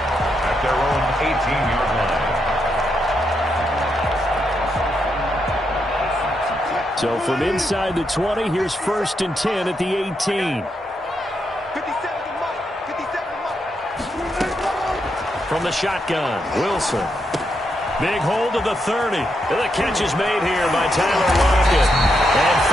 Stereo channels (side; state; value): both; normal; correlation 0.81